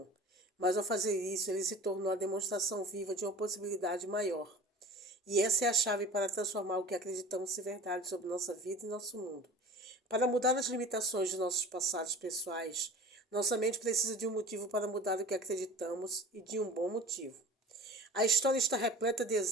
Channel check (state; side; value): normal; both; correlation 0.39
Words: mas ao fazer isso ele se tornou a demonstração viva de uma possibilidade maior. E essa é a chave para transformar o que acreditamos ser verdade sobre nossa vida e nosso mundo. Para mudar as limitações de nossos passados pessoais, nossa mente precisa de um motivo para mudar o que acreditamos e de um bom motivo. A história está repleta de